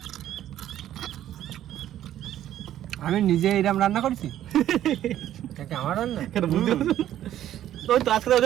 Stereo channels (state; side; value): quieter; left; 12.0 dB